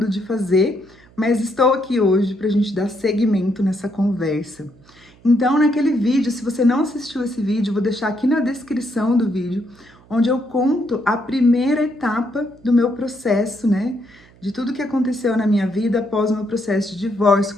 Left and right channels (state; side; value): noise; right; hum, 27 dB below the sound